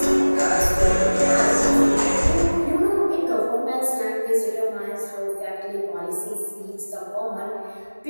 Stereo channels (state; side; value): inverted; both; correlation -1.00